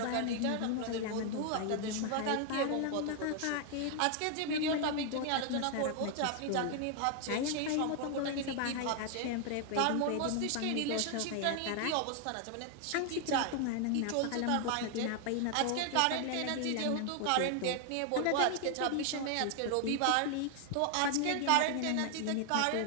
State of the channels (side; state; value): both; different; correlation 0.00